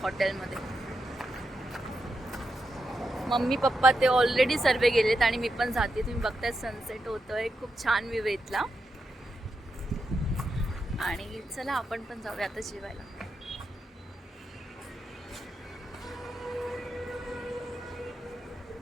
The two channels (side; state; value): both; normal; correlation 0.86